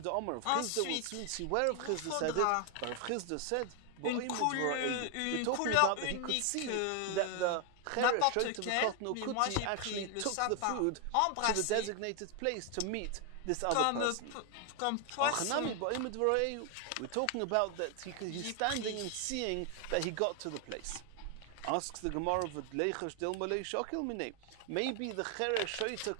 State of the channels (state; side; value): different; both; correlation 0.00